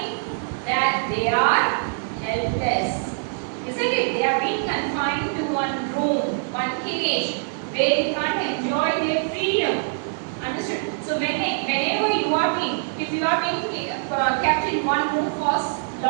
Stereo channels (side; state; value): left; silent; digital silence